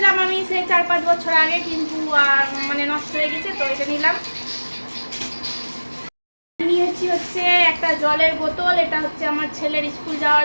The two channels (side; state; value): both; inverted; correlation -1.00